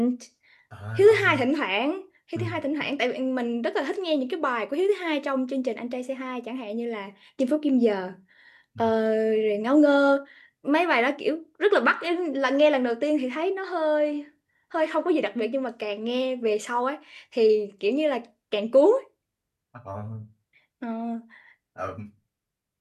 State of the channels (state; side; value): identical; both; correlation 1.00